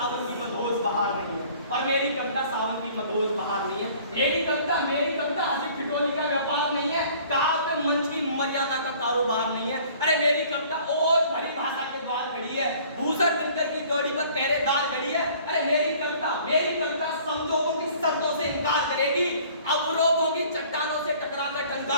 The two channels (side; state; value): both; inverted; correlation -0.53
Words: की मधोस बहार नहीं है, मेरी कविता हंसी ठिठोली का व्यापार नहीं है, काव्य मंच की मर्यादा का कारोबार नहीं है। अरे मेरी कविता ओज भरी भाषा के द्वार खड़ी है, भूषण बिनकर की जोड़ी पर पहरेदार खड़ी है। अरे मेरी कविता समझौतों की शर्तों से इनकार करेगी, अवरोधों की चट्टानों से टकराकर